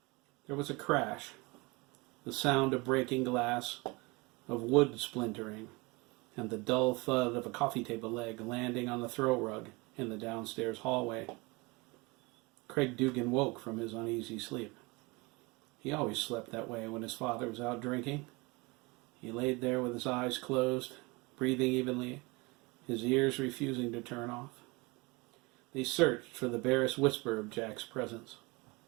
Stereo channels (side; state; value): left; quieter; 25.9 dB